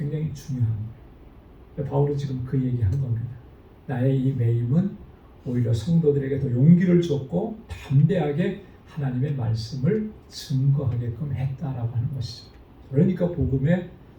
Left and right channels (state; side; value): identical; both; correlation 1.00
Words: 중요한 거예요. 바울은 지금 그 얘기하는 겁니다. 나의 이 매임은 오히려 성도들에게 더 용기를 줬고 담대하게 하나님의 말씀을 증거하게끔 했다라고 하는 것이죠. 그러니까 복음의